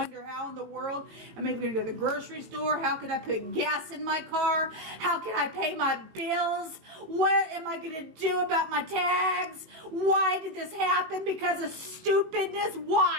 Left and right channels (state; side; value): late; left; 18 ms